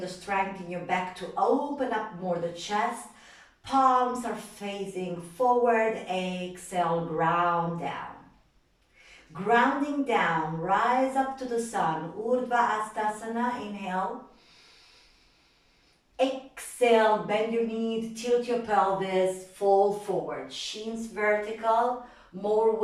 strength in your back to open up more the chest. Palms are facing forward. Exhale, ground down. Grounding down, rise up to the sun. Urdhva Hastasana, inhale. Exhale, bend your knees, tilt your pelvis, fall forward. Shins vertical, more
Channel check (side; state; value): both; identical; correlation 1.00